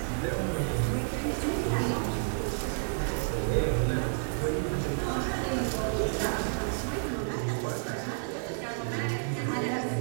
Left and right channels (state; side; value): silent; left; digital silence